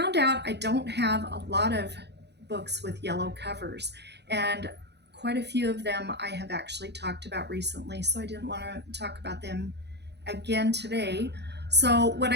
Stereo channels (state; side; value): late; left; 0.49 ms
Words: out I don't have a lot of books with yellow covers, and quite a few of them I have actually talked about recently, so I didn't want to talk about them again today. So what